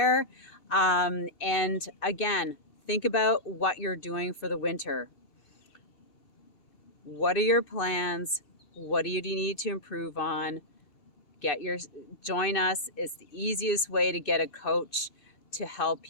And again, think about what you're doing for the winter. What are your plans? What do you need to improve on? Join us. It's the easiest way to get a coach to help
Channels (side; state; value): right; late; 6.8 ms